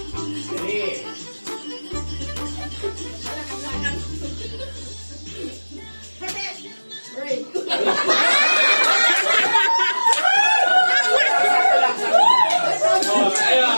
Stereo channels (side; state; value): both; inverted; correlation -1.00